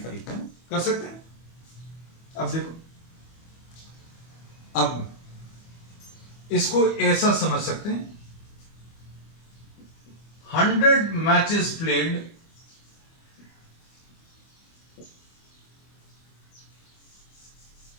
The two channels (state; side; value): late; right; 25 ms